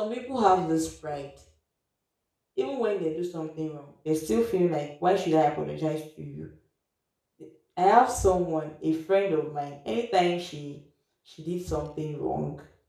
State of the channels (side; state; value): both; identical; correlation 1.00